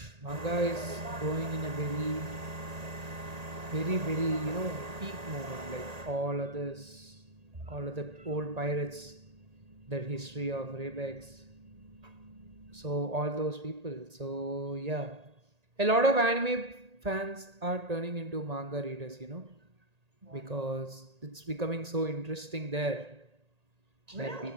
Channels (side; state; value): left; late; 1.8 ms